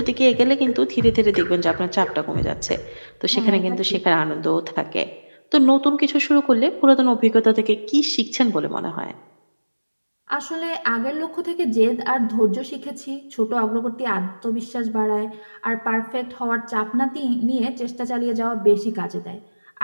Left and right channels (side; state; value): both; inverted; correlation -1.00